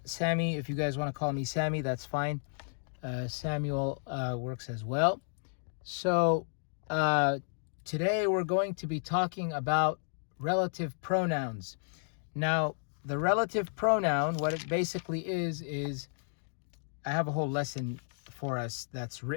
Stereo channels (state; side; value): silent; right; digital silence